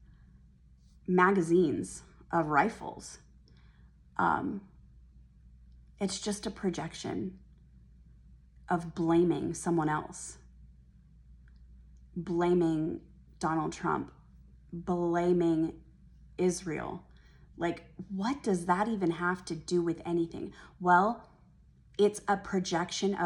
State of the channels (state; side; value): identical; both; correlation 1.00